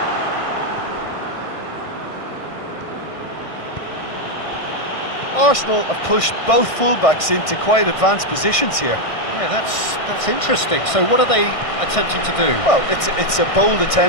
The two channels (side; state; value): right; late; 1.6 ms